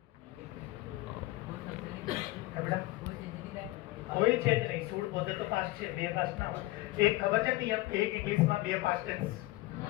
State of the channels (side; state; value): right; quieter; 18.6 dB